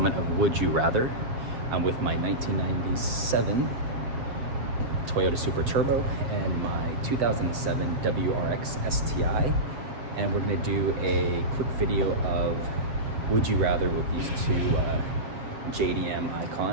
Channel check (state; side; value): late; left; 7.4 ms